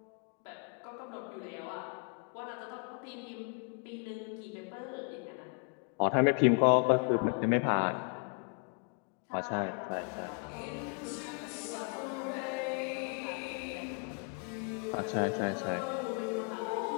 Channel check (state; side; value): quieter; right; 37.0 dB